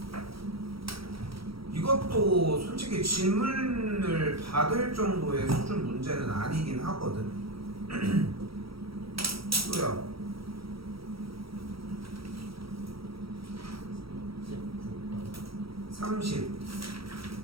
이것도 솔직히 질문을 받을 정도의 수준 문제는 아니긴 하거든. 또요. 30.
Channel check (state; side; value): late; left; 0.75 ms